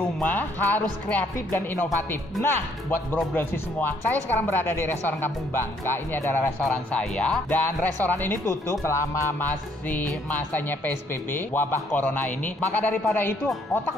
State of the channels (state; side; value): normal; both; correlation 0.67